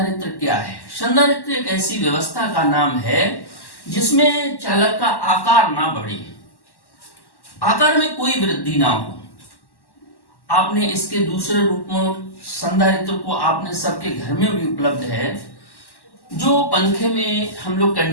क्या है। संधारित्र एक ऐसी व्यवस्था का नाम है जिसमें चालक का आकार ना बढ़े, आकार में कोई वृद्धि ना हो। आपने इसके दूसरे रूप में संधारित्र को आपने सबके घर में भी उपलब्ध है, जो पंखे में हम लोग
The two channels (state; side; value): late; right; 1.1 ms